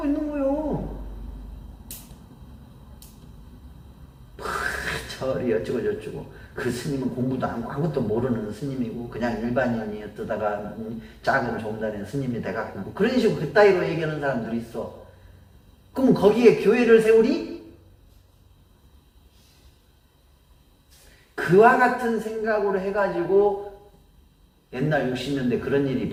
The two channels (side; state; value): both; identical; correlation 1.00